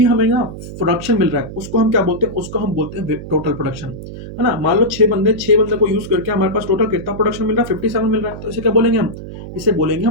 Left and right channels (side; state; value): right; noise; hum, 11 dB below the sound